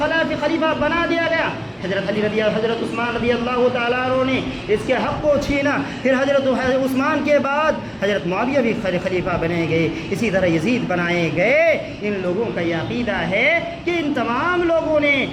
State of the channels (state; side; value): identical; both; correlation 1.00